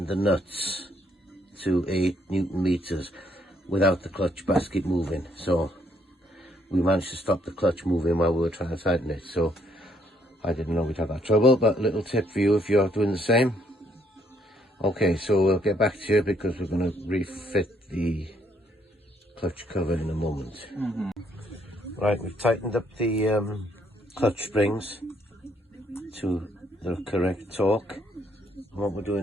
the nuts to 8 Newton meters without the clutch basket moving. So we managed to stop the clutch moving while we were trying to tighten it. So I didn't know we'd have that trouble, but a little tip for you if you're doing the same. Okay, so we'll get back to you because we're going to refit the clutch cover in a moment. Right, we've tightened up the clutch springs to the correct torque. And what we're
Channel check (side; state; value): both; normal; correlation 0.69